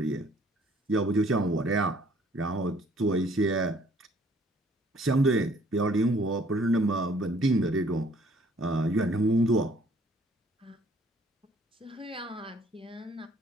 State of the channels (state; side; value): normal; both; correlation 0.60